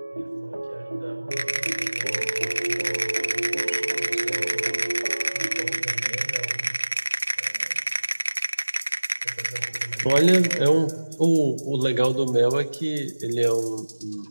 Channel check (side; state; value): both; inverted; correlation -1.00